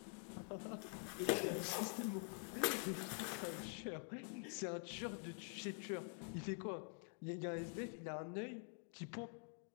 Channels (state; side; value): quieter; right; 39.1 dB